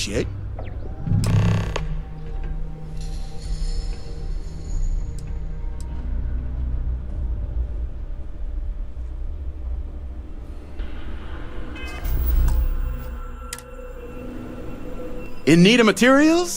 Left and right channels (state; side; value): identical; both; correlation 1.00